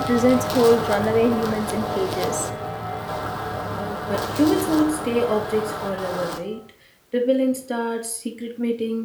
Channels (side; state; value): both; identical; correlation 1.00